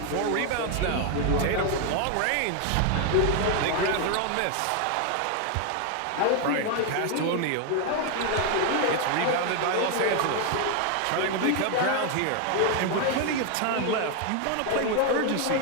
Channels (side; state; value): both; different; correlation 0.01